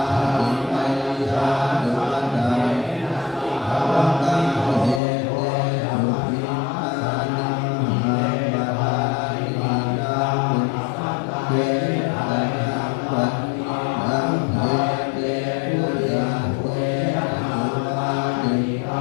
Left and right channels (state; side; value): drops out; right; at 5.0 s